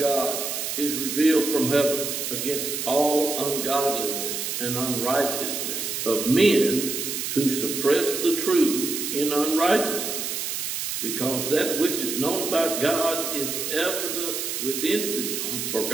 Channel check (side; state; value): right; noise; hiss, 3 dB below the sound